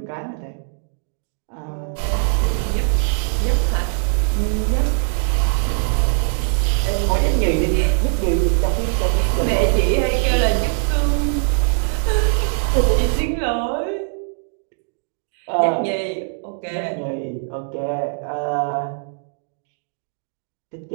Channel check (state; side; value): silent; left; 65 dB below the other